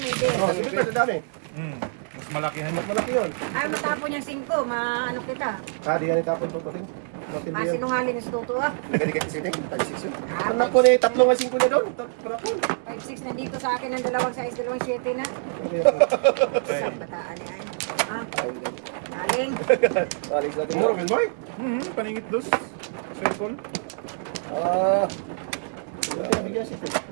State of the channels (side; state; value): left; silent; digital silence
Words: nebe. Oh, sige pa, dami. Mas malakihan Mas niya. malaki yun. Ay, matapon yung 5. Maano kita. Kadi yan itapon to pati. Matindi yan. Sinungaling yung tuto ah. Nagkadi kay isiting. Tag 6 yun. Pag na po na 3 nga 5 niya doon. Para po. 5-6 nandito sa akin ng 2 size, 2-7 na. Saan bataan yan? Ah, aling. Alis natin. Muro, man boy. Paningit dos. Circle. Ah. Buti nabigyan siya.